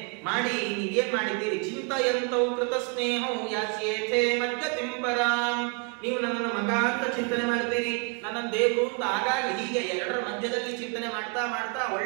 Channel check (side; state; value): left; quieter; 33.7 dB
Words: ಮಾಡಿ ನೀವೇನ್ ಮಾಡಿದ್ದೀರಿ? ಚಿಂತಯಂತೌ ಕೃತ ಸ್ನೇಹೌ ಯಾಸ್ಯೇಥೇ ಮದ್ಗತಿಂ ಪರಾಂ. ನೀವು ನನ್ನನ್ನು ಮಗ ಅಂತ ಚಿಂತನೆ ಮಾಡ್ತೀರಿ, ನನ್ನ ದೇವರು ಅಂತ ಆಗಾಗ ಹೀಗೆ ಎರಡರ ಮಧ್ಯದಲ್ಲಿ ಚಿಂತನೆ ಮಾಡ್ತಾ ಮಾಡ್ತಾ